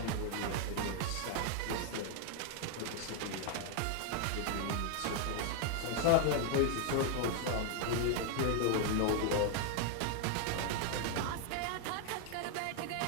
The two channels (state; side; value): different; both; correlation 0.00